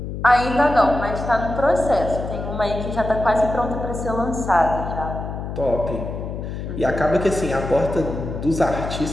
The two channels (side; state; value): left; noise; hum, 6 dB below the sound